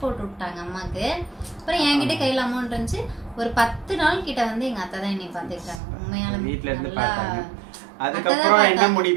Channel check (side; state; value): left; drops out; at 5.8 s